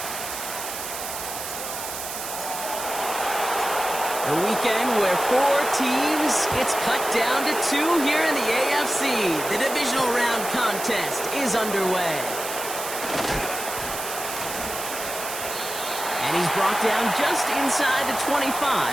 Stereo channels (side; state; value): right; noise; hiss, 7 dB below the sound